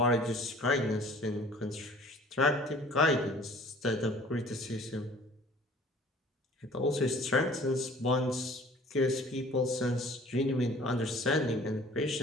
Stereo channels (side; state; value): both; normal; correlation 0.50